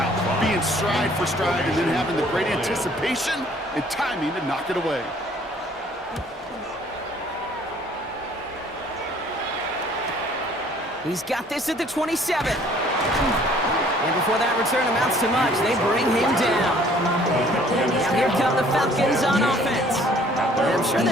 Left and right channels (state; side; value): normal; both; correlation 0.57